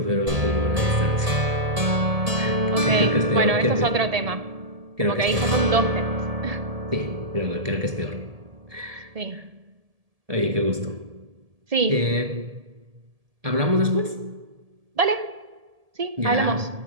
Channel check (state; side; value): late; left; 1.7 ms